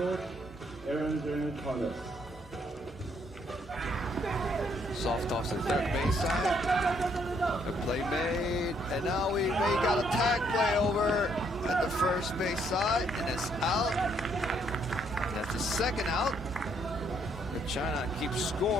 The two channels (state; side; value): normal; both; correlation 0.70